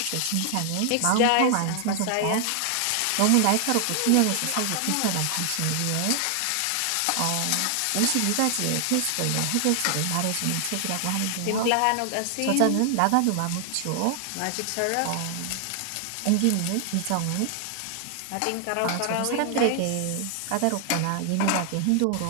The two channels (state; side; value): different; both; correlation 0.00